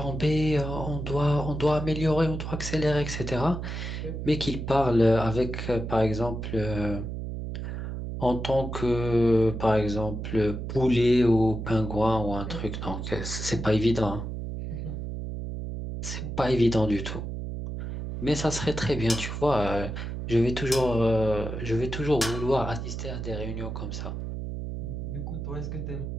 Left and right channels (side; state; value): right; noise; hum, 5 dB below the sound